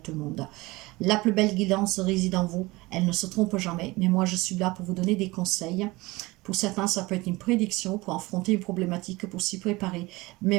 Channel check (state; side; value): quieter; left; 21.7 dB